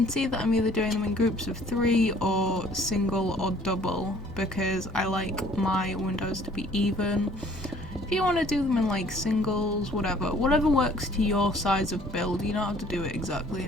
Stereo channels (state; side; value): normal; both; correlation 0.56